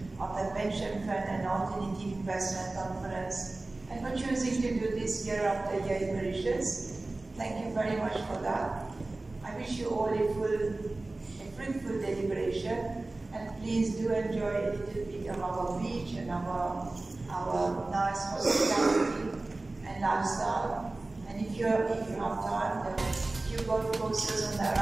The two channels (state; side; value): quieter; left; 3.1 dB